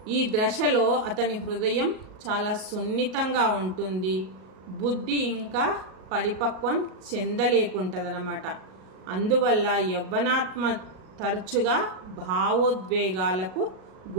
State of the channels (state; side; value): late; left; 38 ms